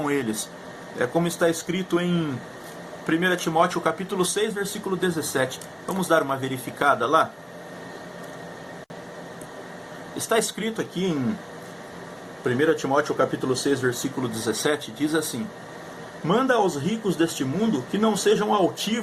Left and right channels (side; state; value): both; identical; correlation 1.00